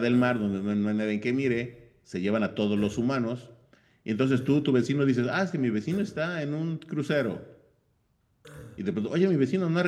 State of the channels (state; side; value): identical; both; correlation 1.00